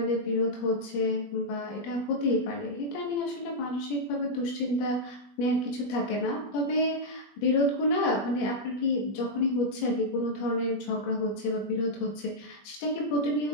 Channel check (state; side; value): late; right; 21 ms